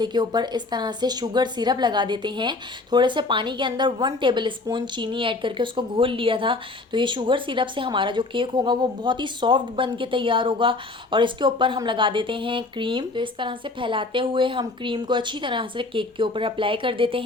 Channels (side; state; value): right; quieter; 3.3 dB